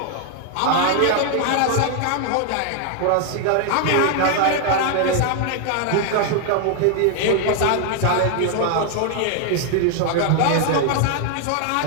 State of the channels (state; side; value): different; both; correlation 0.00